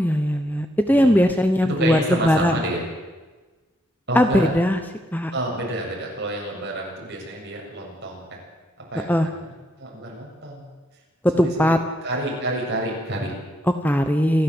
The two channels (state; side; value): normal; both; correlation 0.76